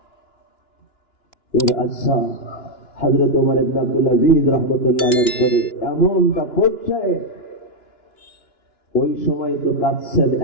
এর আচ্ছা হযরত ওমর ইবনে আব্দুল আজিজ রাহমাতুল্লাহ আলাইহির পরে এমনটা পড়ছে, ওই সময় তো কাঁদছেন,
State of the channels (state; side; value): late; right; 2.9 ms